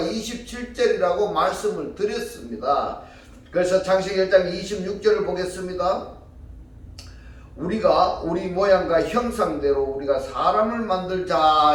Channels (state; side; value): identical; both; correlation 1.00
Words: 말씀을 드렸습니다. 그래서 창세기 1장 26절을 보겠습니다. 우리가 우리 모양과 형상대로 우리가 사람을